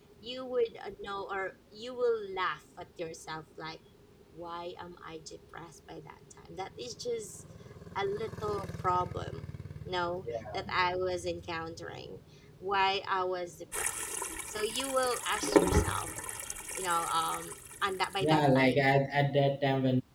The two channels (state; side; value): identical; both; correlation 1.00